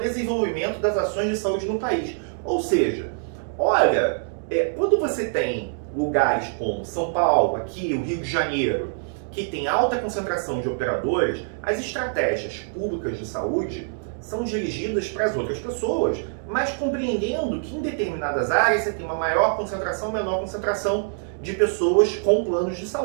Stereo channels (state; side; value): silent; left; digital silence